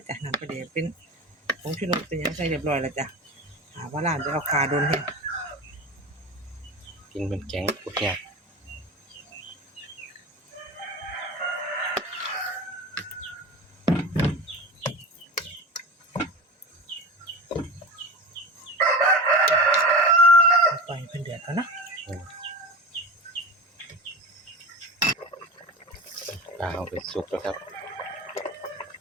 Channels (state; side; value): normal; both; correlation 0.28